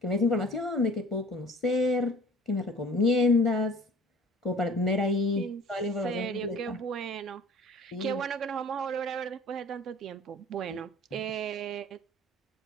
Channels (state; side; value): normal; both; correlation 0.47